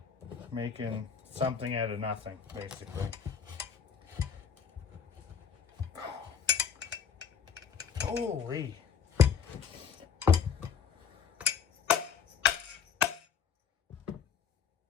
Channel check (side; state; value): right; quieter; 7.1 dB